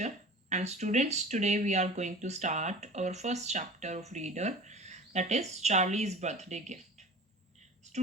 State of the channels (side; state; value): both; normal; correlation 0.38